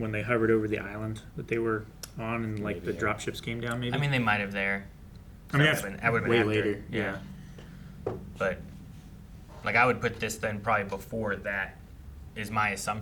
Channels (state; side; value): identical; both; correlation 1.00